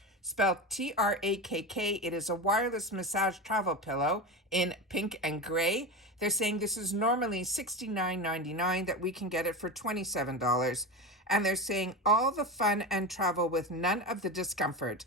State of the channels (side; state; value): both; normal; correlation 0.23